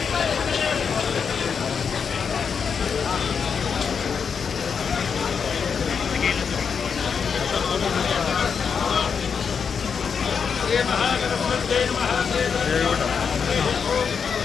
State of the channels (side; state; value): right; quieter; 6.3 dB